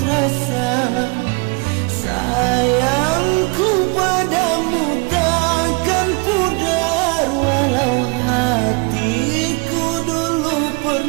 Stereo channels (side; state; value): left; quieter; 30.6 dB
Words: rasa sayangku padamu takkan pudar, walau hatiku dulu